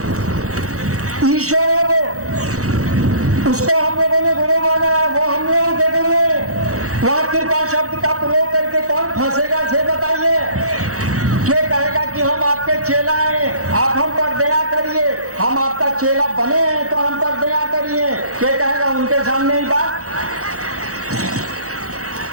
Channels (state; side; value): late; left; 0.65 ms